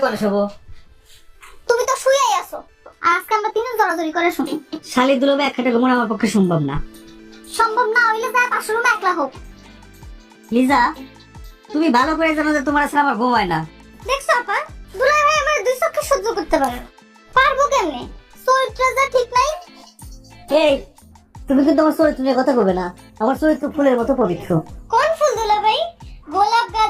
কোন শোবো? তুমি তো শুয়েই আছো। আজকে আমরা তিনজন জড়াজড়ি করে শুনি। শালি দুলবে এক খাটে ঘুমানো আমার পক্ষে সম্ভব না। সম্ভব না হইলে যায় পাশের রুমে একলা হোক। লিজা, তুমি ভালো করে জানো যে তোমার আসলে আমার ঘুম হয় না। দেখছো আপা, দুলাই ভাই আমার দুই চোখে সহ্য করতে পারে না। পারবো কেমনে? চরিত্র যা ঠিক নাই। এই, তুমি কিন্তু আমার চরিত্র নিয়ে কথা কবে না। আমার চরিত্র ফুলের মতো পবিত্র। কোন ফুল দুলা ভাই? গোলাপ,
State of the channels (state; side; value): identical; both; correlation 1.00